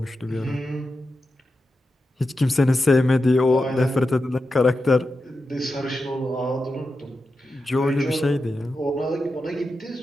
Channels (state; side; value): normal; both; correlation 0.90